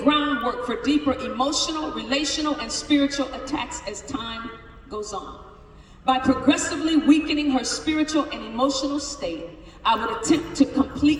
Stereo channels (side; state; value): both; identical; correlation 1.00